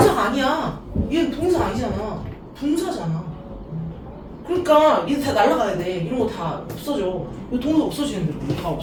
아니야. 얘는 동사 아니잖아. 분사잖아. 그러니까 얘 다 날라가야 돼. 이런 거 다 없어져. 이거 동사 없어지는데 이거 다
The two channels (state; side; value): identical; both; correlation 1.00